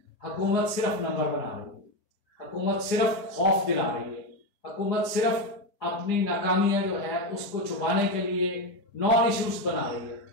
हुकूमत सिर्फ नंबर बना रही है, हुकूमत सिर्फ खौफ दिला रही है, हुकूमत सिर्फ अपनी नाकामियां जो है उसको छुपाने के लिए नॉन इश्यूज बना रही है।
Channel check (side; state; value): right; late; 5.0 ms